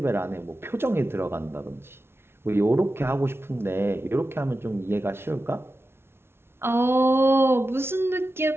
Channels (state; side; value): late; left; 0.12 ms